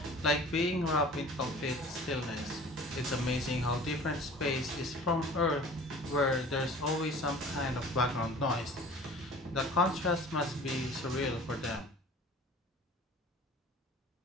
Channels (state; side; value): normal; both; correlation 0.44